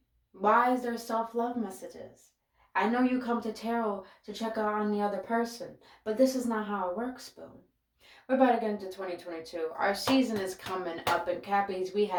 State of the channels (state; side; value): identical; both; correlation 1.00